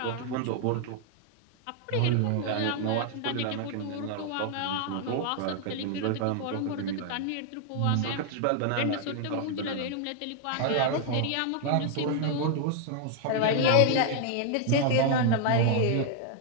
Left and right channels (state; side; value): different; both; correlation 0.00